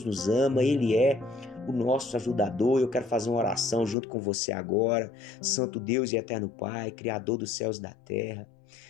nos ama, Ele é o nosso ajudador. Eu quero fazer uma oração junto com você agora. Santo Deus e eterno Pai, Criador dos céus e da terra,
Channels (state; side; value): drops out; right; at 4.0 s